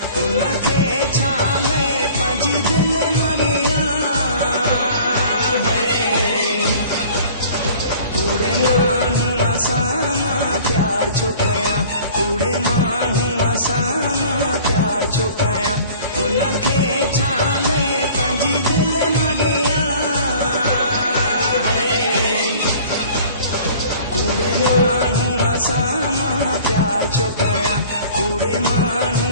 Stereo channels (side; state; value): both; inverted; correlation -0.47